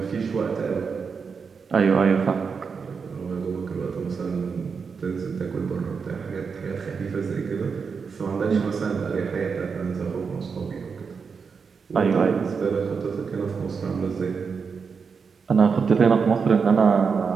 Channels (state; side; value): quieter; left; 5.6 dB